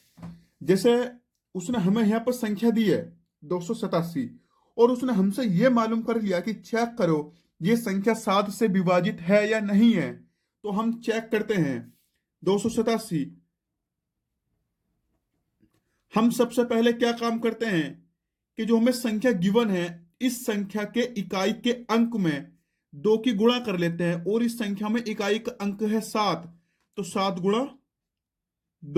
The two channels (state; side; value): identical; both; correlation 1.00